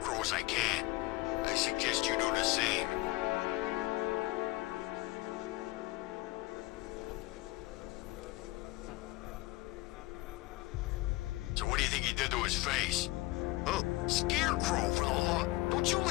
as I can. I suggest you do the same. his face. Oh, scarecrow for the law. Don't you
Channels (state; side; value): quieter; right; 20.6 dB